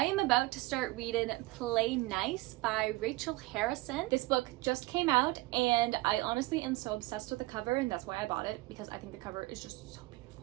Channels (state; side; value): quieter; left; 21.1 dB